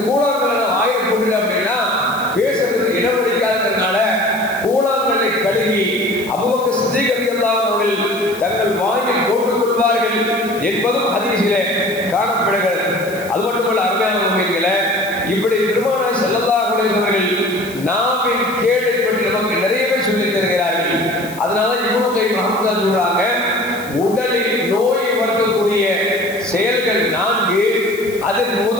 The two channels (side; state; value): left; noise; hiss, 18 dB below the sound